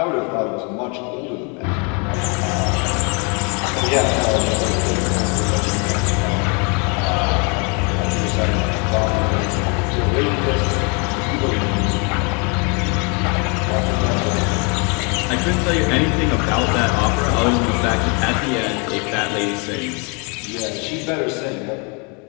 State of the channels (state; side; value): quieter; right; 33.7 dB